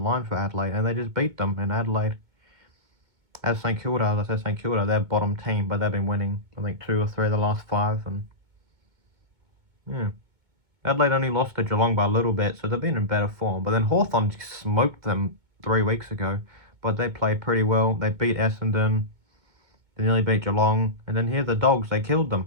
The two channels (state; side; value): late; left; 2.2 ms